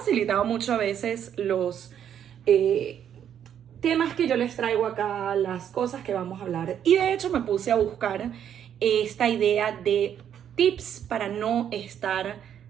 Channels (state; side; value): quieter; left; 9.3 dB